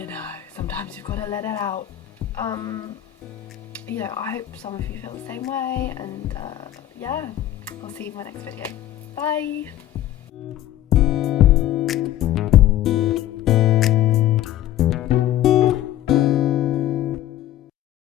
know, sometimes you've got to let it out. You know, I hope some of you feel the same way, and yeah, I'll see you in my next video. Bye!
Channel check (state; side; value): quieter; right; 12.9 dB